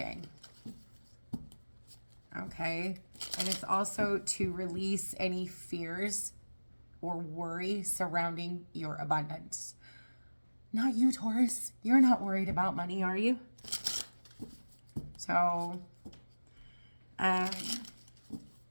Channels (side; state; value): both; inverted; correlation -1.00